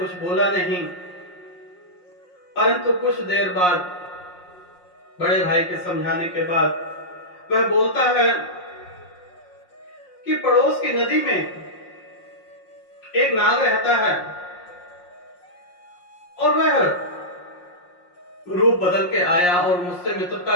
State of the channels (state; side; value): late; right; 5.6 ms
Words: बोला नहीं, परंतु कुछ देर बाद बड़े भाई के समझाने के बाद वह बोलता है कि पड़ोस की नदी में एक नाग रहता है, और वह रूप बदल के आया और मुझसे